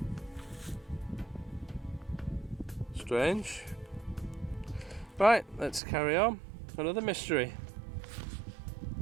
Strange. Right, let's carry on. Another mystery.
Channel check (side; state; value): left; drops out; at 5.8 s